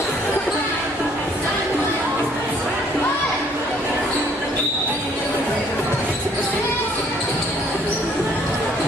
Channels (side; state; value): both; normal; correlation 0.62